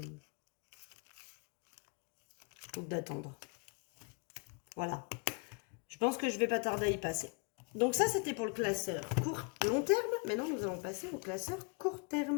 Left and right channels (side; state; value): right; quieter; 33.7 dB